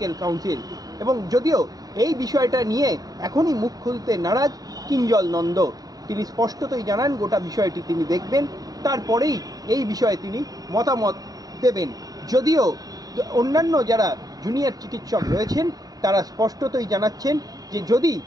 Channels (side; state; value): left; late; 0.18 ms